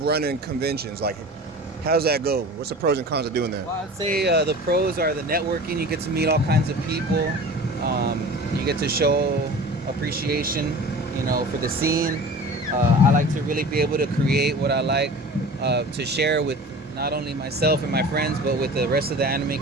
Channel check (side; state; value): both; normal; correlation 0.39